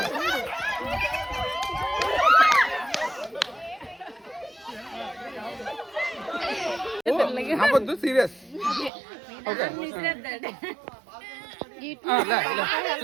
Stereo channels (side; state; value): left; drops out; at 8.9 s